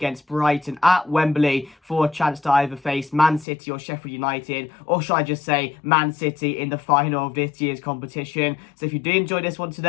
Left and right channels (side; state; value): right; drops out; at 3.5 s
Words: Brighton at Wembley for a chance to either face Man City or Sheffield United, or should I just say Man City in the final of this year's competition. So if you do enjoy this one